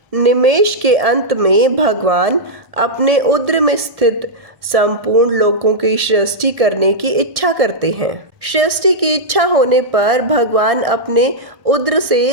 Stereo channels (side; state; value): left; late; 1.7 ms